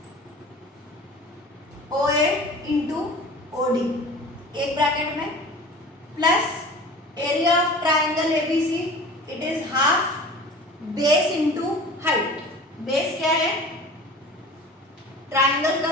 ओ ए into O D एक ब्रैकेट में, plus area of triangle ABC, it is half base into height. Base क्या है, triangle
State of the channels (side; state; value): both; normal; correlation 0.40